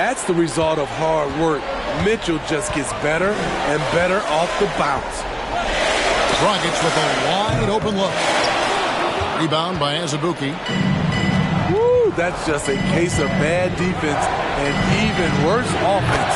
the result of hard work. Mitchell just gets better and better off the bounce. Dragic with a wide open look. Rebound by Azubuike. Woo, that's just a case of bad defense and even worse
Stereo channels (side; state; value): both; identical; correlation 1.00